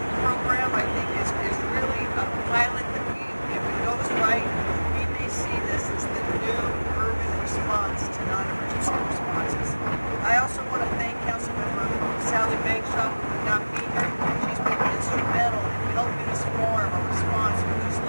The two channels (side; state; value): both; inverted; correlation -1.00